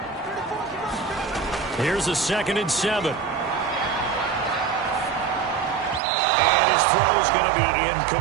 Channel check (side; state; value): left; drops out; at 6.0 s